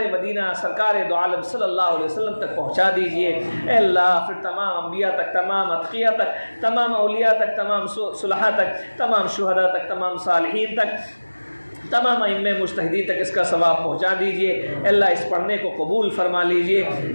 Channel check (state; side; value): inverted; both; correlation -1.00